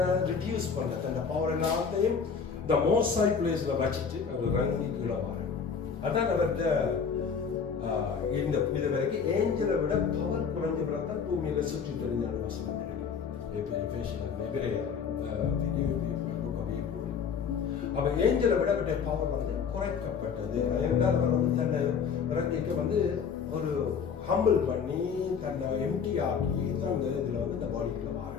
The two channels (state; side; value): quieter; right; 6.3 dB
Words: ரிடியூஸ் பண்ண, தன்னை பவர் எல்லாத்தையும் இந்த மோஸ்ட் ஹை பிளேஸ்ல வச்சுட்டு அவர் ரங்கி கீழே வர. அதான் அவர்கிட்ட இந்த இது வரைக்கும் ஏஞ்சலை விட பவர் குறைஞ்ச பிறகு பூமியில சுற்றி தெரிஞ்சான வசனம் இருக்கு. அப்ப ஏஞ்சலை விட அவருடைய பவர் வந்து குறைக்கப்பட்டது. என்றால் அவர் வந்து தன்னை இறங்கிக்க வந்து ஒரு ஹம்பிள் பண்ணி தன்னை எம்டி ஆக்கி தான் இதுல வந்து இந்த பாடிக்குள்ள மாற.